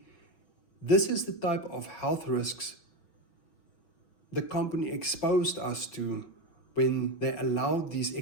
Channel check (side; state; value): right; late; 6.2 ms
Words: this is the type of health risks the company exposed us to when they allowed these